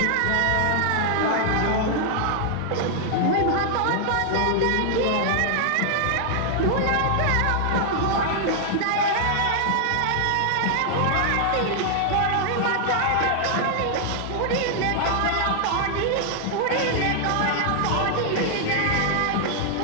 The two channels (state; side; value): different; both; correlation 0.00